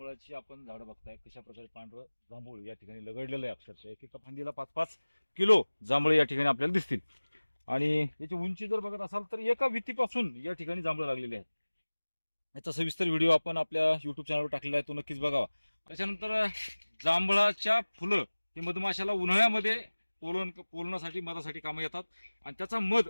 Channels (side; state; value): both; inverted; correlation -1.00